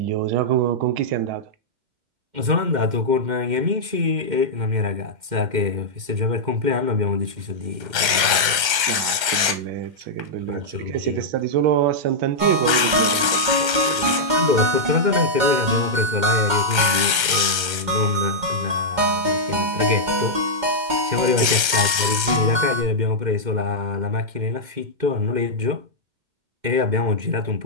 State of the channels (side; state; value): left; late; 2.1 ms